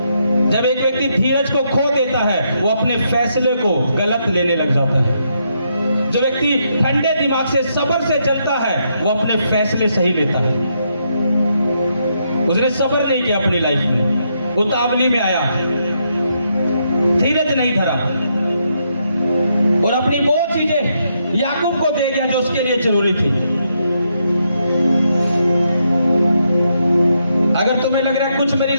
जब एक व्यक्ति धीरज को खो देता है, वो अपने फैसले को गलत लेने लग जाता है। जो व्यक्ति ठंडे दिमाग से सब्र से चलता है, वो अपने फैसले सही लेता है। उसने सब्र नहीं किया अपनी लाइफ में, उतावली में आया, धीरज नहीं धरा और अपनी वो चीजें याकूब को दे गया जो उसके लिए जरूरी थी। अगर तुम्हें लग रहा है कुछ मेरी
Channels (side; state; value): both; inverted; correlation -0.78